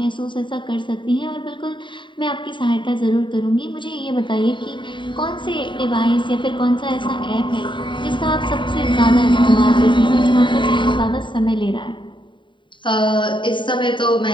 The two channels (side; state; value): right; late; 0.23 ms